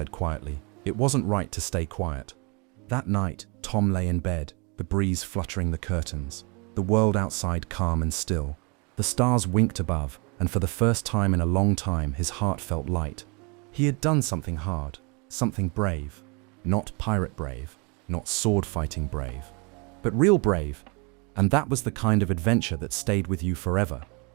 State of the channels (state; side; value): quieter; left; 31.3 dB